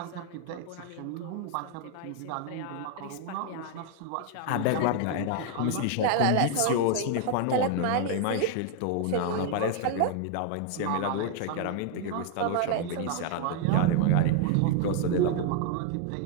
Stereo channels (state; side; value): different; both; correlation 0.00